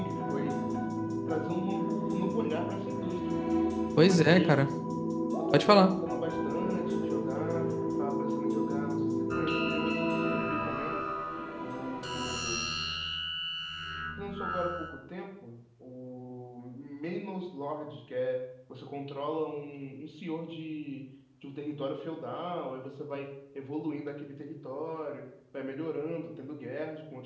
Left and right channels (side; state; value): both; identical; correlation 1.00